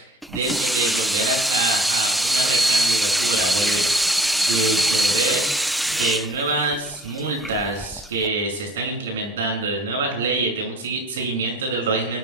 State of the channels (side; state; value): both; normal; correlation 0.49